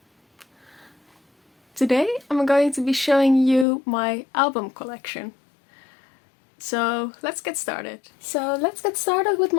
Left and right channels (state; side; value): drops out; right; at 3.7 s